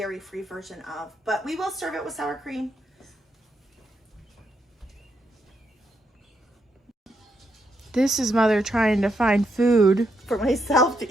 version of, but we will serve it with sour cream. This is Mother trying to find food For myself to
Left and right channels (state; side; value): normal; both; correlation 0.79